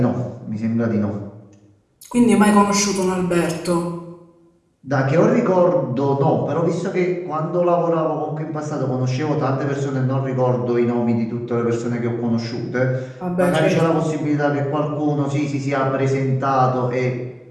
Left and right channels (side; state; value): both; identical; correlation 1.00